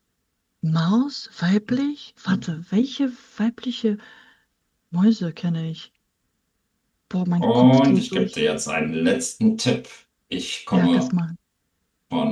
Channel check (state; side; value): identical; both; correlation 1.00